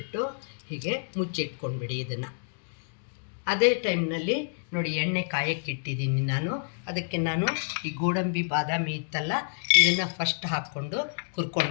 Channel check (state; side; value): silent; right; digital silence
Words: ಹೀಗೆ ಮುಚ್ಚಿಟ್ಕೊಂಡ್ಬಿಡಿ ಇದನ್ನು. ಅದೇ ಟೈಮ್ನಲ್ಲಿ ನೋಡಿ, ಎಣ್ಣೆ ಕಾಯಕ್ಕಿಟ್ಟಿದ್ದೀನಿ ನಾನು. ಅದಕ್ಕೆ ನಾನು ಈ ಗೋಡಂಬಿ ಬಾದಾಮಿ ಇತ್ತಲ್ಲ, ಇದನ್ನು ಫಸ್ಟ್ ಹಾಕ್ಕೊಂಡು